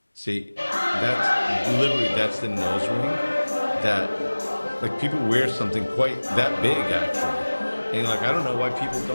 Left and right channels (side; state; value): both; inverted; correlation -1.00